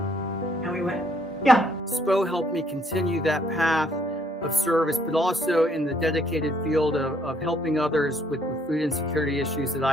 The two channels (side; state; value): both; normal; correlation 0.67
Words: And we went, yeah. SPO helped me continue that path of service, but also in the dedicated field of helping others with food insecurity issues that